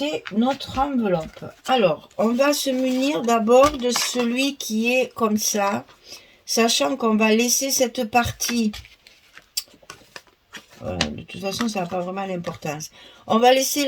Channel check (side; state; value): both; identical; correlation 1.00